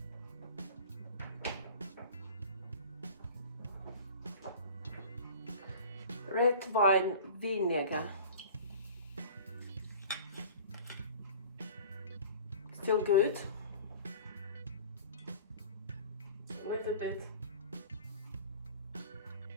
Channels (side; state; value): both; inverted; correlation -0.42